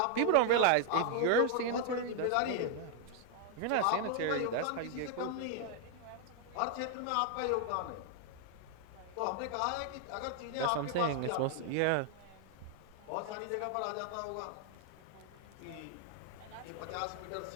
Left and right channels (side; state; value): both; different; correlation 0.00